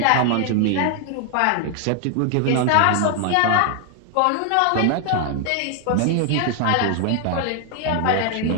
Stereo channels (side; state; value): both; different; correlation 0.00